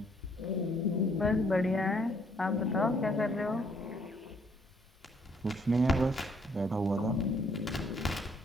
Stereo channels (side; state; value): both; normal; correlation 0.66